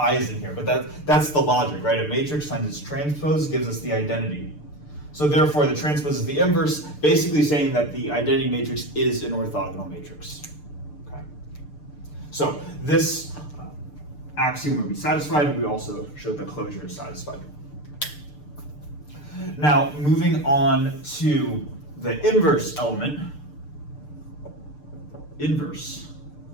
in here, but that's the logic, right? A matrix times its transpose gives us the identity. So therefore the transpose is the inverse, basically saying that the identity matrix is an orthogonal matrix. Okay. So this axiom would be satisfied. We also showed that closure is satisfied. Now moving on to the inverse element. Inverse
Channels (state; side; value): late; right; 6.8 ms